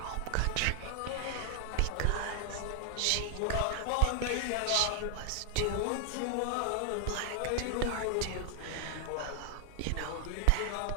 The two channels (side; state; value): both; different; correlation 0.00